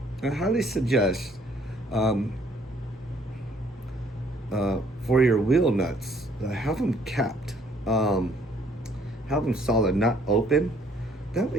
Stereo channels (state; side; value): normal; both; correlation 0.62